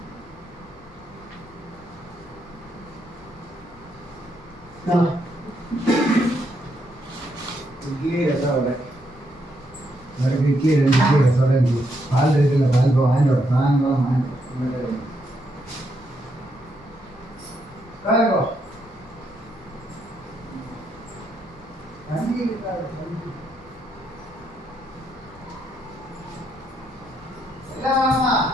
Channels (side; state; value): both; normal; correlation 0.77